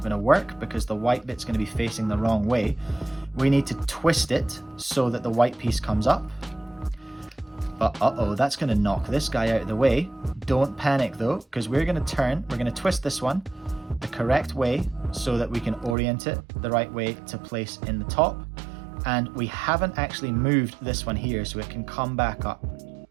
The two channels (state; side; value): drops out; left; at 16.0 s